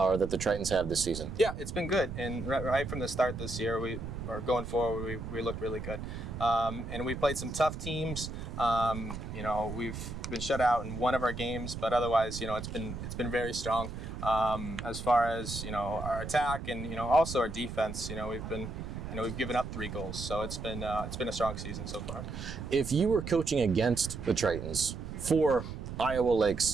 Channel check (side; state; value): right; noise; rumble, 7 dB below the sound